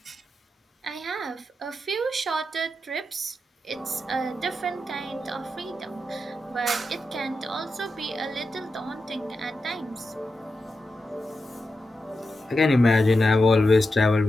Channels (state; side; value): normal; both; correlation 0.89